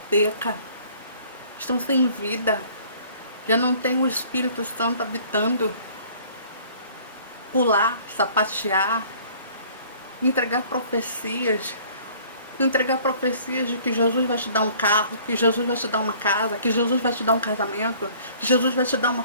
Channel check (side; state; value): both; inverted; correlation -0.53